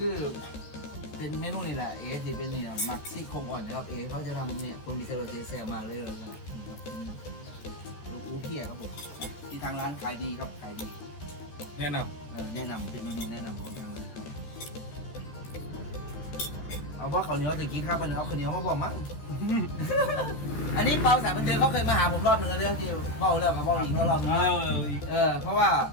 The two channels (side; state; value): right; late; 14 ms